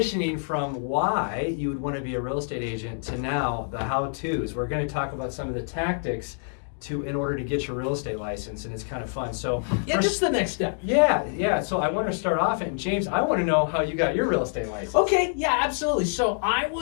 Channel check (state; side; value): silent; right; digital silence